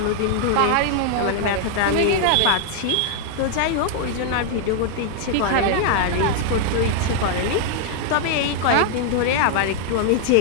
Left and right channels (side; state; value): both; different; correlation 0.00